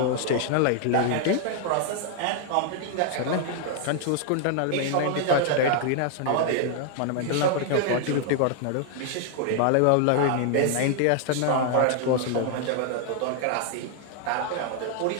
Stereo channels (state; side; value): different; both; correlation 0.00